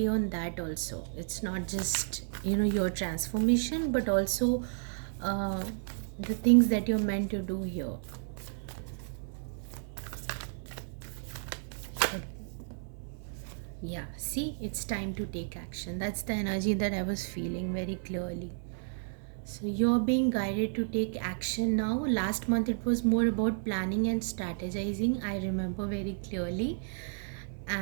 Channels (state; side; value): silent; left; 56 dB below the other